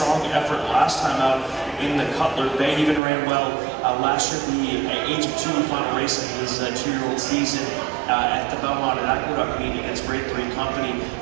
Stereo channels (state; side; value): drops out; left; at 3.0 s